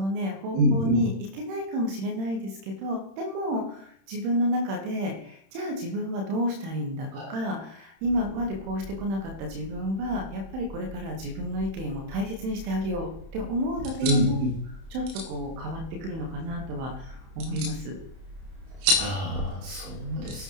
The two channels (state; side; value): late; left; 31 ms